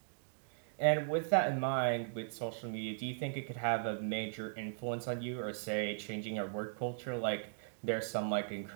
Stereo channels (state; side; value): silent; left; digital silence